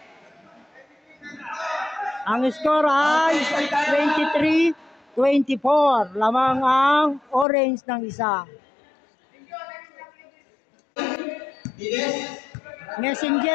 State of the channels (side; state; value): right; drops out; at 7.5 s